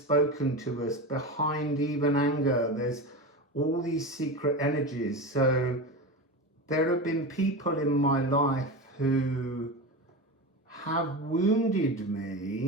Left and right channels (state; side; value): normal; both; correlation 0.23